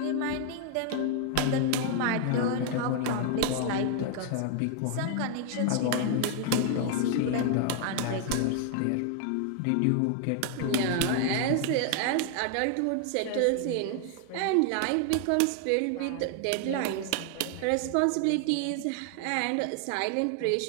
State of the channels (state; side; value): different; both; correlation 0.00